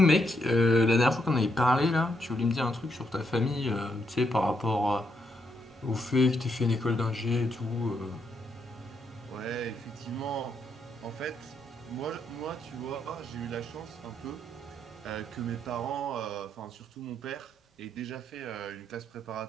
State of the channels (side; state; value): both; normal; correlation 0.78